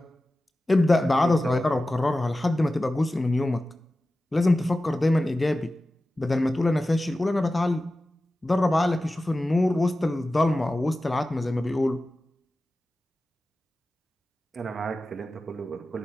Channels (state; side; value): normal; both; correlation 0.95